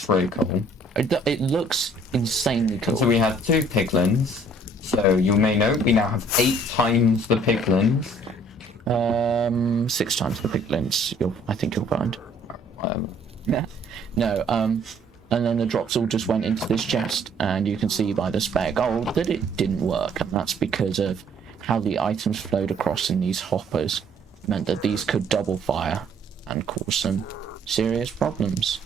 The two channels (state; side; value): normal; both; correlation 0.60